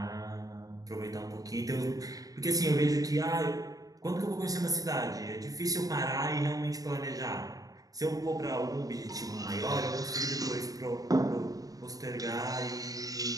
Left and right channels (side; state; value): left; late; 0.18 ms